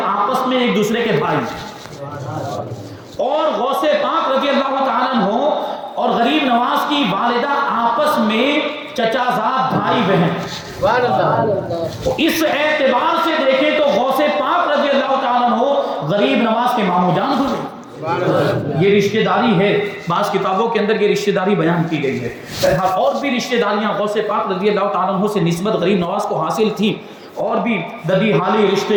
آپس میں ایک دوسرے کے بھائی ہیں، اور غوث پاک رضی اللہ تعالیٰ عنہ اور غریب نواز کی والدہ آپس میں چچا زاد بھائی بہن. اس اعتبار سے دیکھیں تو غوث پاک رضی اللہ تعالیٰ عنہ غریب نواز کے ماموں جان ہوئے. یہ رشتہ داری ہے، بعض کتابوں کے اندر یہ رشتہ داری بیان کی گئی ہے. اور بھی رشتہ داریاں غوث پاک رضی اللہ تعالیٰ عنہ سے نسبت غریب نواز کو حاصل تھی، اور بھی ددی حالی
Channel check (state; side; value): identical; both; correlation 1.00